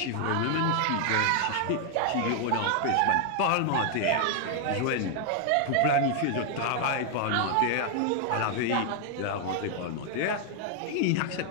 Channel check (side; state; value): both; different; correlation 0.00